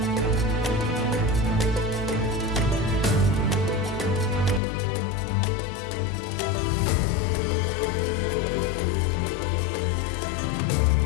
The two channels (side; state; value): right; drops out; at 4.6 s